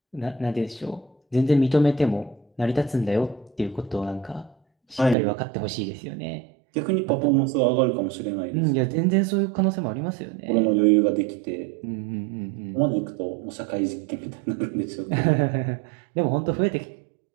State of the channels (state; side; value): drops out; left; at 5.2 s